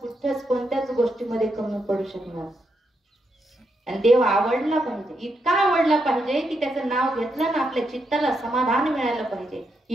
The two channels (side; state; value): both; normal; correlation 0.81